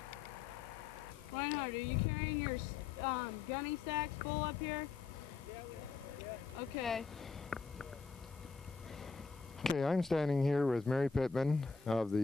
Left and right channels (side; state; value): right; quieter; 5.1 dB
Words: Reinhard, are you carrying your gunny sacks full up here? Okay. Okay, I'm standing here with Mary Pittman of